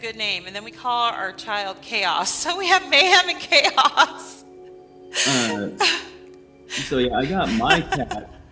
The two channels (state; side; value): identical; both; correlation 1.00